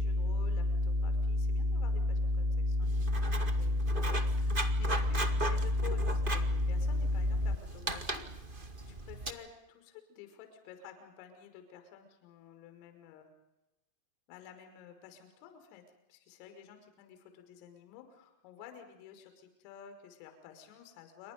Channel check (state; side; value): late; left; 2.5 ms